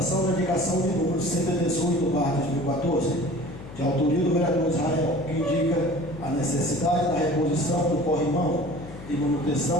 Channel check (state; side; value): noise; left; hum, 14 dB below the sound